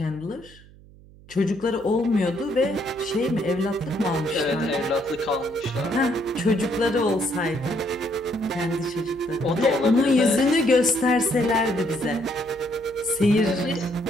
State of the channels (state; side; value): noise; right; hum, 23 dB below the sound